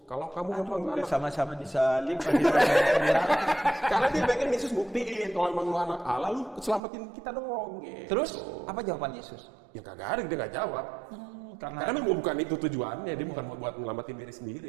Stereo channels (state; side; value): drops out; left; at 6.8 s